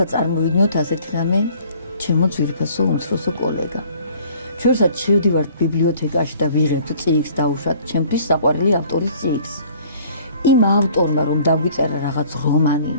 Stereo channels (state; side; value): inverted; both; correlation -0.54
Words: წარმოვიდგინოთ ასეთი რამე, ჩემო ძვირფასო უმცროსო კოლეგა. ჩვენსაც შევდივართ ბიბლიოთეკაში და ვიღებთ წიგნს დაუშვათ ჩემთვის საყვარელი ავტორის წიგნს. იმ ავტორმა რომ დაგვიწერა რაღაც რომანი,